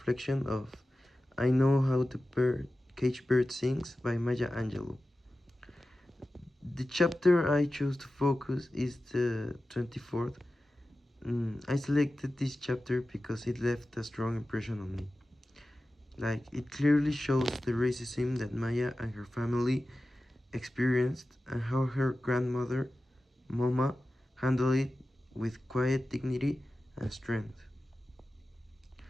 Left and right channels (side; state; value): both; normal; correlation 0.94